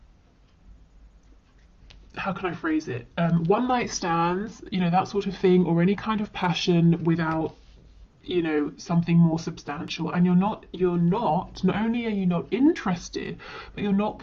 How can I phrase it? One night stands, you know, that sort of thing, or any kind of passion without, you know, something more substantial. And not only are you not interested, but you're not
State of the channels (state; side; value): identical; both; correlation 1.00